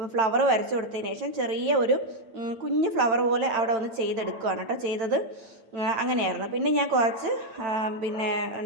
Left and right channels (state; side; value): late; left; 9.1 ms